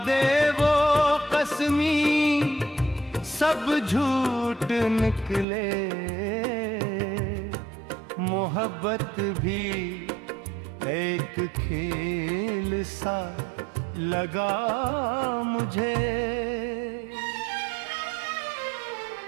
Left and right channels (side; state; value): left; drops out; at 5.5 s